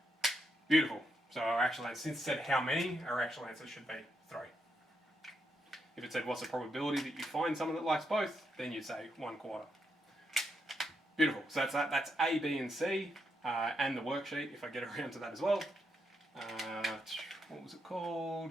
Beautiful. So our actual answer, since it said how many, our actual answer should be 3. If it said what's the probability that you find someone that likes both, then you'd say 1/4. Beautiful. So that's that. That's A, B, and C, and the worksheet if I get around to that as well. What was it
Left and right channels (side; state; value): both; normal; correlation 0.81